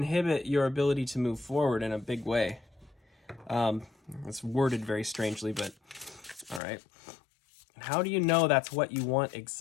your ability to move forward in a big way. It's worded very strangely, but all right. How do you know that's what you want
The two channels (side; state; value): right; drops out; at 6.6 s